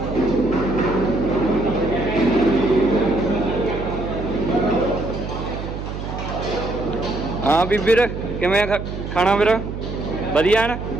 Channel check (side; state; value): right; noise; hum, 7 dB below the sound